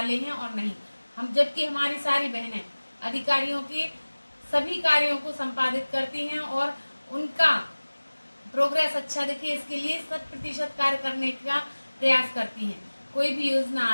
हैं और नहीं। हम जबकि हमारी सारी बहनें अधिकारियों के सभी कार्यों को संपादित करती हैं और उनका प्रोग्रेस अच्छा दिखे, इसके लिए 100% कार्य करने का प्रयास करती हैं। कोई भी योजना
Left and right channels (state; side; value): inverted; both; correlation -1.00